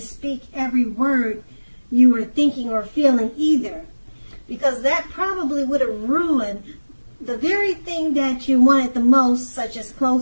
every word you were thinking or feeling either, because that probably would have ruined the very thing that you wanted the most, such as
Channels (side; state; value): both; inverted; correlation -1.00